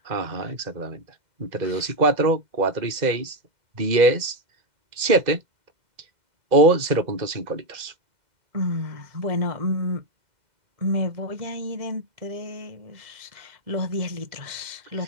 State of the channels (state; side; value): late; left; 2.0 ms